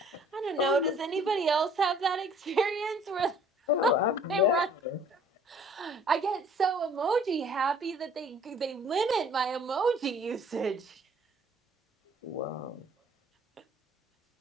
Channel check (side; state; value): both; normal; correlation 0.55